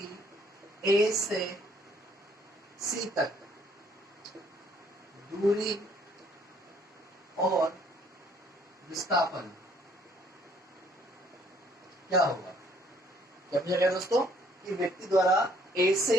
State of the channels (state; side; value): normal; both; correlation 0.63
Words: ए से सी तक दूरी और विस्थापन क्या होगा। क्या पूछा गया दोस्तों कि व्यक्ति द्वारा ए